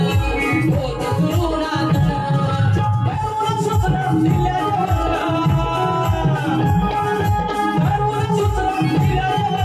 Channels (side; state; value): both; identical; correlation 1.00